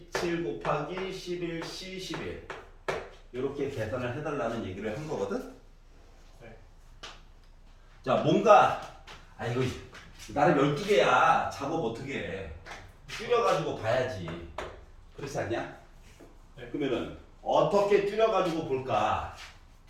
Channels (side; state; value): both; identical; correlation 1.00